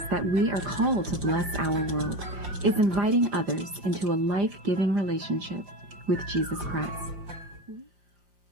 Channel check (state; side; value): late; left; 5.7 ms